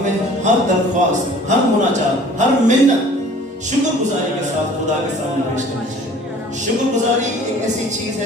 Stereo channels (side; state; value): both; normal; correlation 0.49